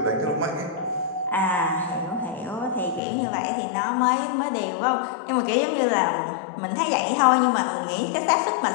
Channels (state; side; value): drops out; right; at 3.0 s